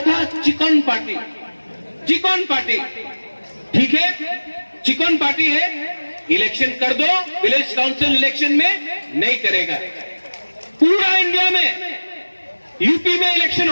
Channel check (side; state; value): both; inverted; correlation -1.00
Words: चिकन पार्टी, चिकन पार्टी। ठीक है, चिकन पार्टी है। इलेक्शन कर दो, विलेज काउंसिल इलेक्शन में नहीं करेगा। पूरा इंडिया में, यूपी में इलेक्शन